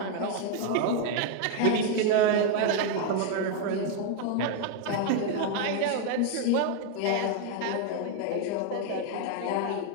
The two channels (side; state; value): both; different; correlation 0.01